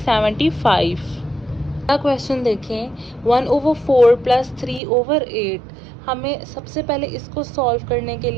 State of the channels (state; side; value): drops out; left; at 4.8 s